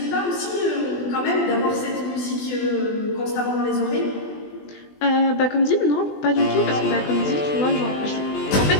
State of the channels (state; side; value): late; right; 20 ms